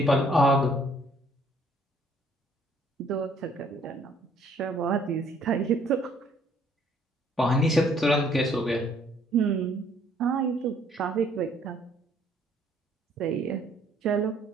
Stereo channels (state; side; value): normal; both; correlation 0.62